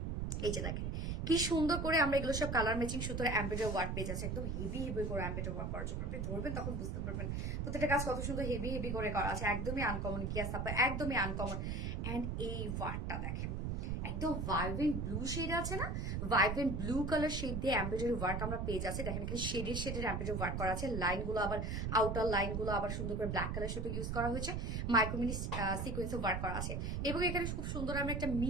এই যে দেখেন কি সুন্দর করে আমরা এগুলো সব কালার ম্যাচিং সুতোর এমব্রয়ডারি ওয়ার্ক পেয়ে যাচ্ছে, একদম হেভি হেভি করে এমব্রয়ডারি ওয়ার্ক করা। যখন আপনি ধরবেন তখন বুঝতে পারবেন প্রত্যেকটা কাজ কত সুন্দর হেভি হেভি করে করা আছে, একদমই আনকমন। কি আছে আপনার, একদমই আনকমন। এন্ড এই ওয়ার্কটা দেখেন, একদম ভাইব্রেন্ট ব্লু শেড আছে না, ভাইব্রেন্ট ব্লু কালার শেড দিয়ে এমব্রয়ডারি ওয়ার্ক আমরা পেয়ে যাচ্ছি। দেখেন এখানে শেডের এমব্রয়ডারি ওয়ার্ক করা আছে। লাইনগুলো আবার আউটার লাইনগুলো আবার সুন্দর করে ব্ল্যাক কালার সুতো ইউজ করা হয়েছে, মাইক্রোমিনি সিকোয়েন্সে ওয়ার্ক করা আছে। এবং এখানে খুব সুন্দর আমরা একটা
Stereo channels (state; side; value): noise; right; rumble, 2 dB below the sound